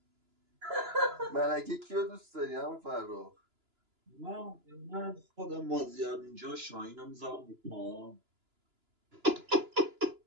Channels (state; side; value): late; left; 2.9 ms